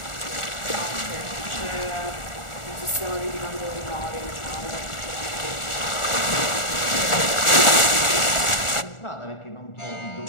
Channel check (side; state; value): right; late; 1.4 ms